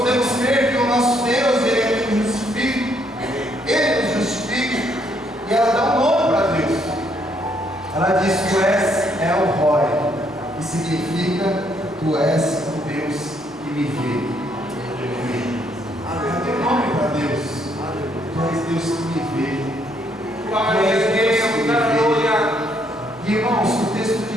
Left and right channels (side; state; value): both; normal; correlation 0.71